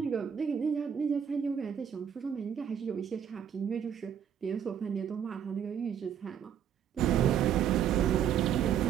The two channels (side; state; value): left; quieter; 8.7 dB